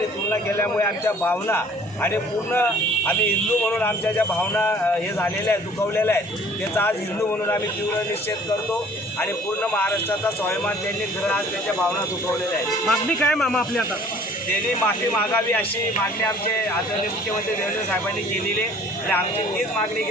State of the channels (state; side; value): normal; both; correlation 0.53